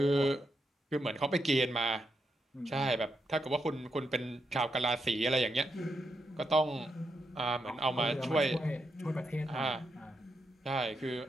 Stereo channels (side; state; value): both; normal; correlation 0.83